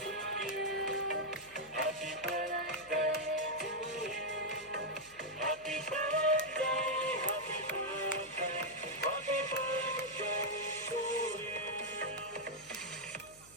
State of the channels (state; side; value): noise; left; hum, 25 dB below the sound